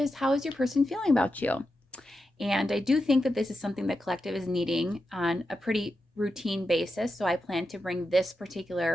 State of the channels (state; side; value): normal; both; correlation 0.88